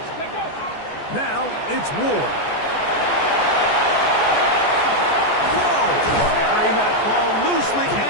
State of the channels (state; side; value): late; right; 14 ms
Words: Now it's Ward. Whoa! Carrying that ball loosely,